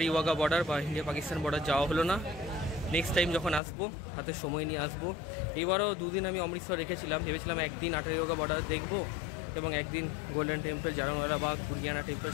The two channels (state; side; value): drops out; right; at 3.6 s